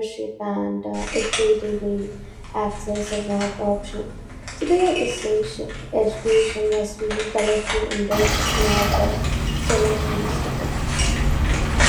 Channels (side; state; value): both; identical; correlation 1.00